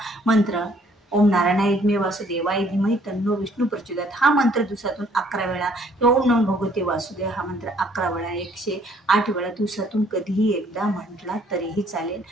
मंत्र ओम नारायणाय विद्महे वासुदेवाय धीमहि तन्नो विष्णू प्रचोदयात हा मंत्र दिवसातून 11 वेळा, किंवा ओम नमो भगवते वासुदेव हा मंत्र 11 वेळा, 108 वेळा दिवसातून कधीही एकदा म्हटला तरीही चालेल.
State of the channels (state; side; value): normal; both; correlation 0.62